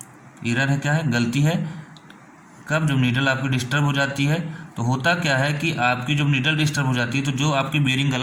एरर है, क्या है, गलती है। कब, जब नीडल आपकी डिस्टर्ब हो जाती है, तो होता क्या है कि आपकी जब नीडल डिस्टर्ब हो जाती है, तो जो आपकी बेयरिंग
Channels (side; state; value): both; identical; correlation 1.00